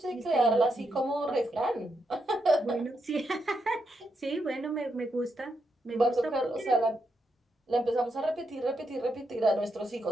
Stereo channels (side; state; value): both; normal; correlation 0.82